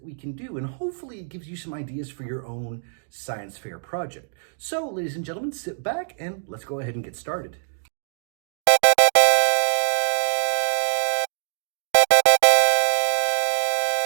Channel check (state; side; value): silent; left; digital silence